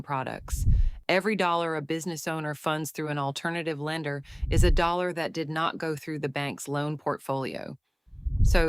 products. Every dollar a business owner funds through an alternative lender is a dollar that did not go through the bank's loan portfolio.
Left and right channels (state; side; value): identical; both; correlation 1.00